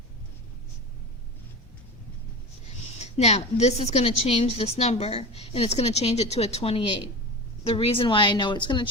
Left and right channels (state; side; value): normal; both; correlation 0.28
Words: Now, this is going to change this number, and it's going to change it to a 28. The reason why I know it's going to